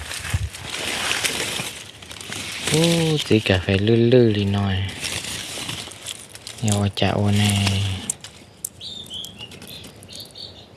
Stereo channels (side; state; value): both; identical; correlation 1.00